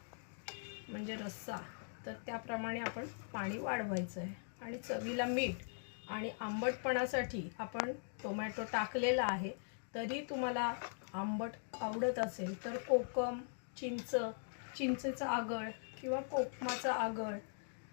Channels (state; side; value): silent; right; digital silence